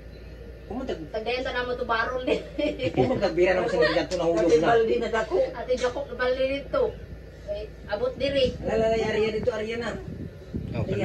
Kumutag Tagdayan ta namo to barol din. nagbira naman sa nila to nahulog Kasi na. balde na dako. Ate Joko bali dito. Kay abot diri. Lalala Arya dito Arya na. Oh,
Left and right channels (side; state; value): both; identical; correlation 1.00